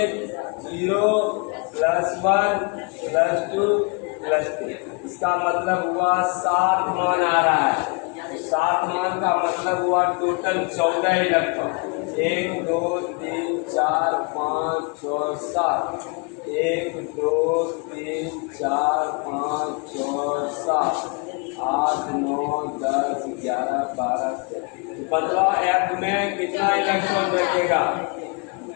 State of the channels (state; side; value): quieter; right; 32.7 dB